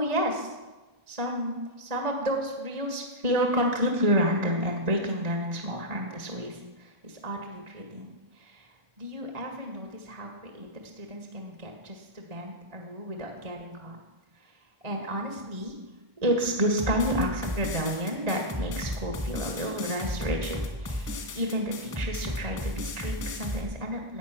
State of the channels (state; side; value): late; left; 1.5 ms